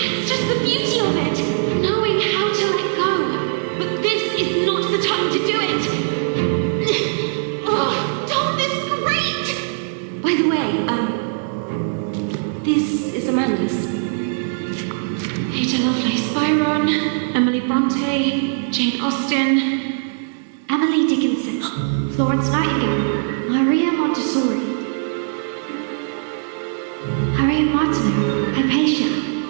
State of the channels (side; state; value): left; silent; digital silence